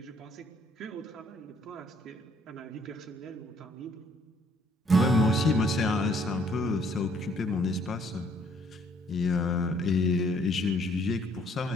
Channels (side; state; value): both; normal; correlation 0.64